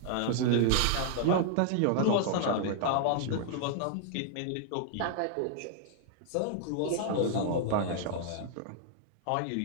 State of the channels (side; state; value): both; different; correlation -0.01